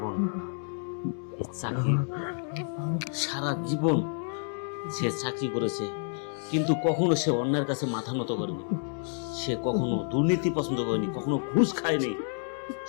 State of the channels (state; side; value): silent; right; 58 dB below the other